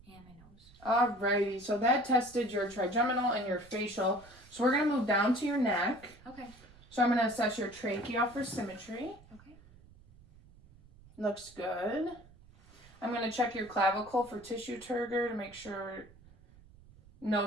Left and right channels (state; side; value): noise; right; rumble, 24 dB below the sound